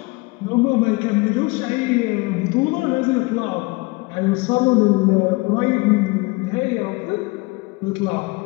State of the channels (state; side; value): quieter; right; 25.1 dB